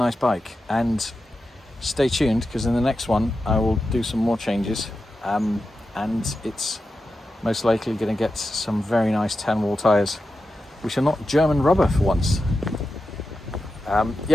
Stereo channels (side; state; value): both; normal; correlation 0.90